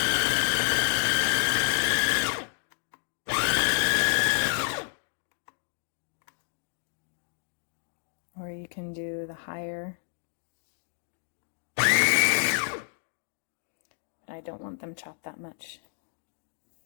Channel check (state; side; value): silent; right; digital silence